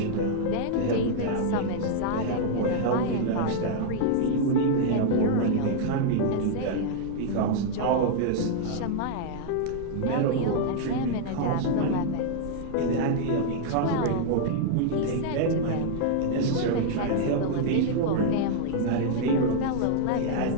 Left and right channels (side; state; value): both; different; correlation -0.01